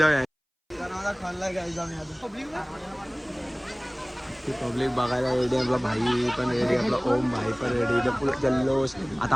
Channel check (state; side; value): identical; both; correlation 1.00